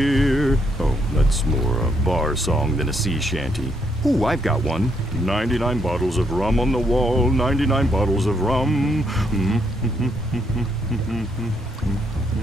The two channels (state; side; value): normal; both; correlation 0.74